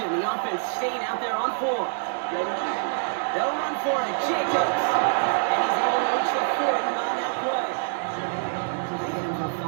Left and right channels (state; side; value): silent; left; digital silence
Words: The offense staying out there on 4. They'll run for it. Jacobs. And he's able to reach the 40 on that play. So they get him for